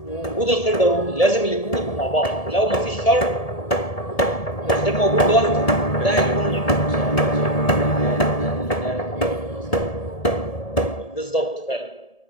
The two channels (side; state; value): right; late; 1.7 ms